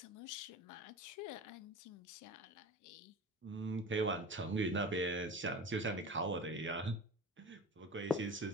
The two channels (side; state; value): both; normal; correlation 0.33